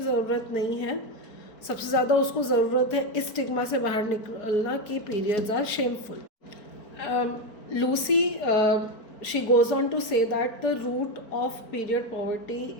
नहीं है, सबसे ज़्यादा उसको ज़रूरत है इस स्टिग्मा से बाहर निकलना कि periods are shameful. Lucy she goes on to say that the root of period poverty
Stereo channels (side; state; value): right; late; 4.4 ms